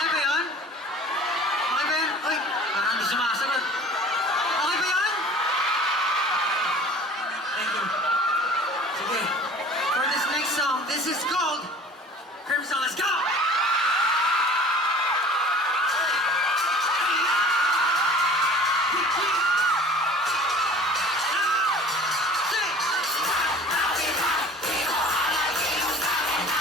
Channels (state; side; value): normal; both; correlation 0.45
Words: Okay ba yun? Okay ba yun? Uy, parang hindi sumasagot. Okay ba yun? Thank you. Sige. For this next song, this is called Crimson. Let's go!